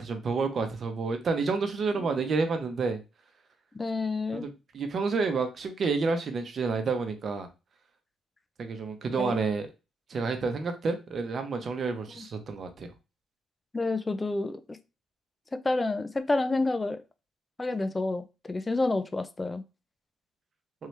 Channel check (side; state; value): both; normal; correlation 0.83